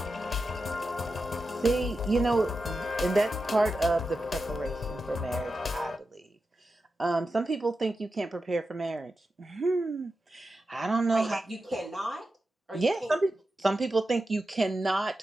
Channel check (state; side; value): normal; both; correlation 0.91